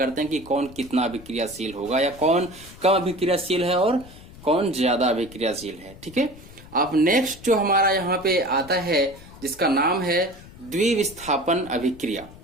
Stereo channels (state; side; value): noise; left; rumble, 19 dB below the sound